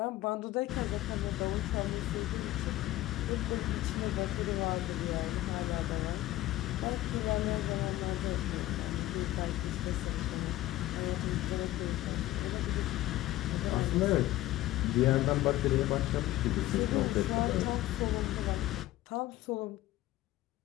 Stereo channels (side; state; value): right; quieter; 15.9 dB